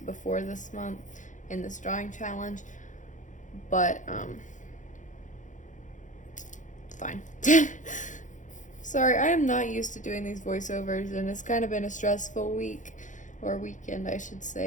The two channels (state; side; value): late; right; 0.36 ms